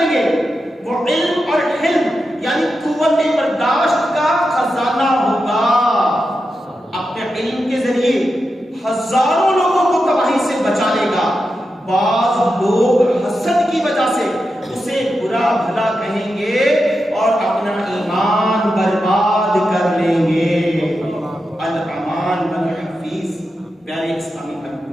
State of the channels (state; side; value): normal; both; correlation 0.89